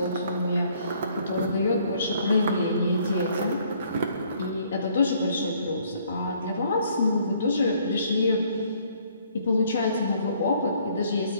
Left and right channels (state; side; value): inverted; both; correlation -0.63